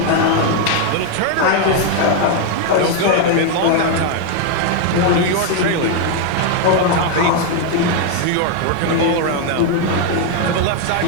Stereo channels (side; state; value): both; different; correlation 0.00